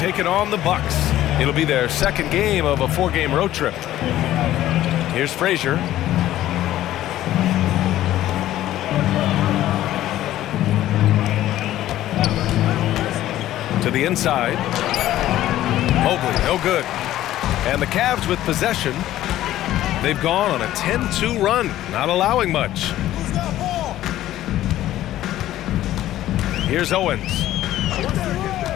on the Bucks. It'll be their second game of a 4-game road trip. Here's Frazier. To the inside. Mobley, no good. And the Cavs with possession. They've gone on a 10-2 run, not allowing much. Here's Owens.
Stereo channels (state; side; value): quieter; right; 13.7 dB